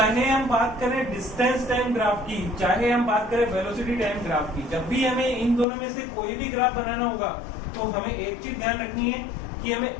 हम बात करें डिस्टेंस टाइम ग्राफ की, चाहे हम बात करें वेलोसिटी टाइम ग्राफ की, जब भी हमें इन दोनों में से कोई भी ग्राफ बनाना होगा तो हमें एक चीज ध्यान रखनी है कि हमें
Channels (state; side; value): drops out; right; at 5.7 s